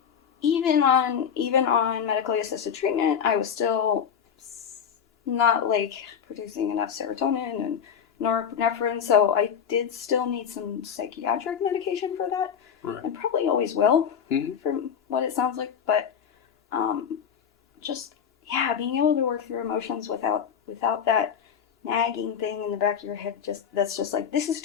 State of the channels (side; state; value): right; quieter; 7.7 dB